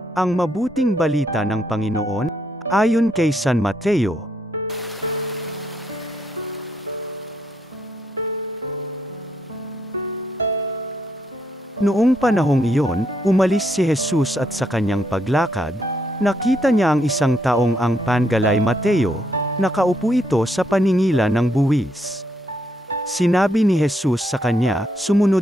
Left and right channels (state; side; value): normal; both; correlation 0.75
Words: Ang mabuting balita ng Panginoon, ayon kay San Mateo. Noong panahong iyon, umalis si Jesus at sa kanyang paglakad, nakita niya ang isang taong ang pangalay Mateo, nakaupo ito sa paningilan ng buwis. Sinabi ni Jesus sa kanya,